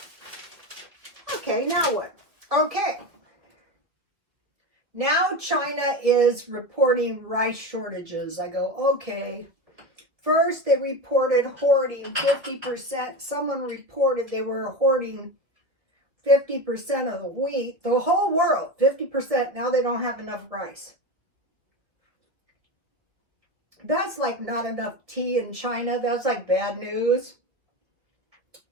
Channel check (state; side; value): late; left; 1.9 ms